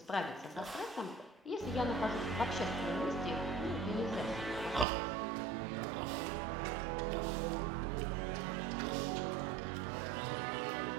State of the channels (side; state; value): left; drops out; at 4.9 s